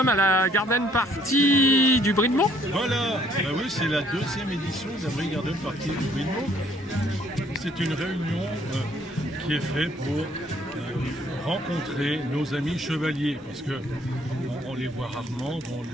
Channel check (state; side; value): normal; both; correlation 0.63